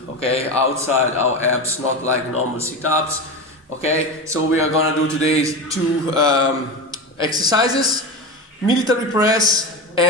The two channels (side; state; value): both; normal; correlation 0.22